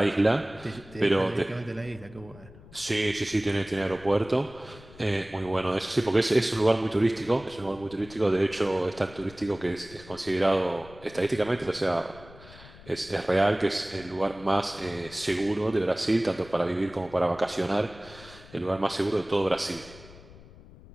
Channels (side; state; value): left; noise; rumble, 20 dB below the sound